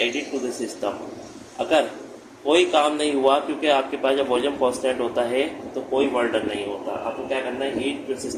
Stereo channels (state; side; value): identical; both; correlation 1.00